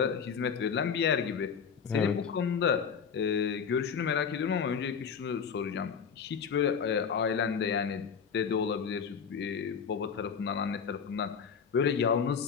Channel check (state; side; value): quieter; right; 6.6 dB